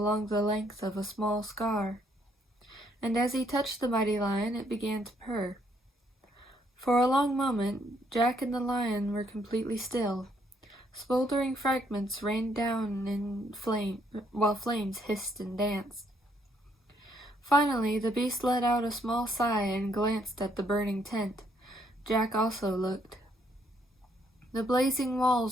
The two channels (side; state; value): both; normal; correlation 0.70